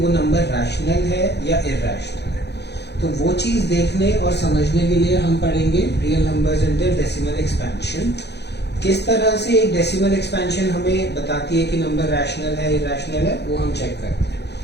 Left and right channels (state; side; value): late; right; 0.49 ms